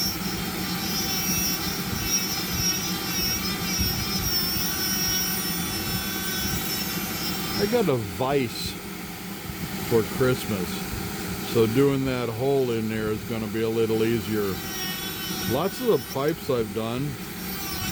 I got a vise for Christmas, so doing that hole in there is going to be a little easier. Lots of the pipes I've done,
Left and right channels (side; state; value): both; identical; correlation 1.00